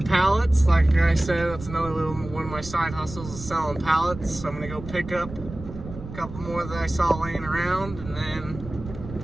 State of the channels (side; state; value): right; noise; rumble, 12 dB below the sound